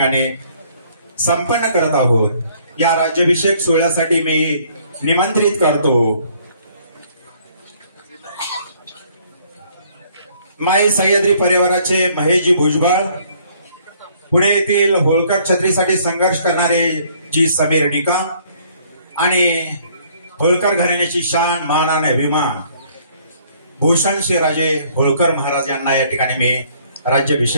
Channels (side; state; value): both; inverted; correlation -0.62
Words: संपन्न करत आहोत. या राज्याभिषेक सोहळ्यासाठी मी निमंत्रित करतो माई सह्याद्री परिवाराचे महेशजी भुजबळ, पुणे येथील होळकर छत्रीसाठी संघर्ष करणारे जी समीर निकम आणि होळकर घराण्याची शान मान आणि अभिमान भूषण शिवराजे होळकर महाराज यांना या ठिकाणी मी